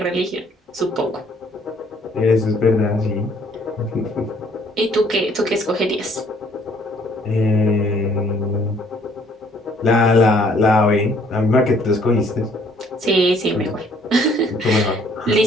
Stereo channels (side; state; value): both; normal; correlation 0.62